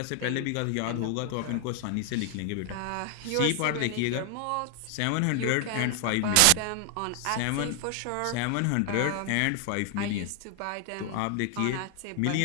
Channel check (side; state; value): both; different; correlation 0.00